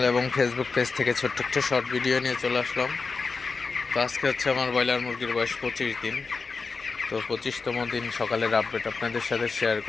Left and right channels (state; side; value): quieter; right; 4.5 dB